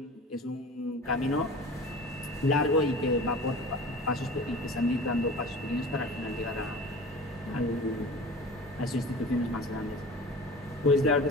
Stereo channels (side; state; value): both; normal; correlation 0.38